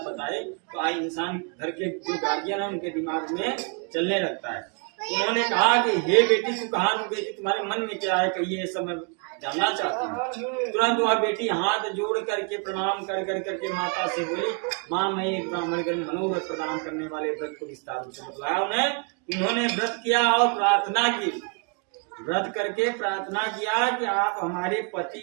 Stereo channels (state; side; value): quieter; left; 35.8 dB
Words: बताए, तो आई इंसान घर के जो गार्जियन है उनके दिमाग में चलने लगता है। उन्होंने कहा कि हे बेटी तू कहाँ गई थी, तुम्हारे मन में क्या है, कहिए सब मैं जानना चाहती हूँ। तुरंत वह बेटी हाथ जोड़ करके प्रणाम कर करके माता से बोली माँ मैं एक ब्राह्मण के मनोरथ प्रदान करने वाले व्रत को विस्तार से बतलाया। उन्होंने व्रत किया और प्रार्थना की, व्रत करके प्रार्थना किया कि आप हमारे पति